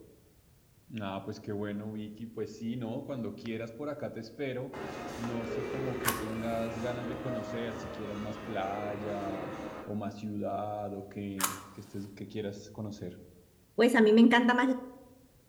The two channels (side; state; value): both; identical; correlation 1.00